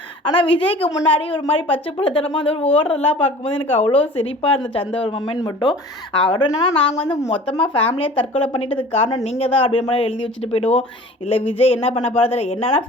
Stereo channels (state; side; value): normal; both; correlation 0.44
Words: ஆனால் விஜய்க்கு முன்னாடி ஒரு மாதிரி பச்சை பிள்ளைத்தனமாக வந்து ஒரு ஓடுறதெல்லாம் பார்க்கும்போது எனக்கு அவ்வளோ சிரிப்பாக இருந்துச்சு அந்த ஒரு மொமெண்ட் மட்டும். அவர் என்னன்னா, நாங்கள் மொத்தமாக ஃபேமிலியாக தற்கொலை பண்ணிட்டதுக்கு காரணம் நீங்கள் தான் அப்படின்ற மாதிரி எழுதி வச்சுட்டு போயிடுவோம். இல்லை விஜய் என்ன பண்ண போகிறது, என்னன்னா